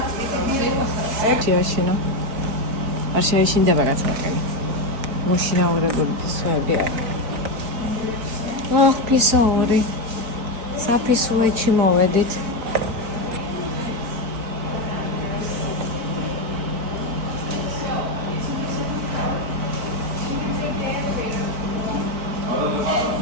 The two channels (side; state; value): left; late; 4.3 ms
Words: შეაშინო. არ შეაშინდება გაცნობები. მოშინაურებული ფისოები არის. ფისოური. საფისოეჩი მოვედით.